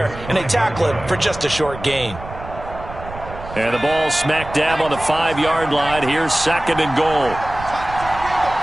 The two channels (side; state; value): right; noise; rumble, 13 dB below the sound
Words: And they tackle it for just a short gain. And the ball smack dab on the 5-yard line. Here's 2nd and goal.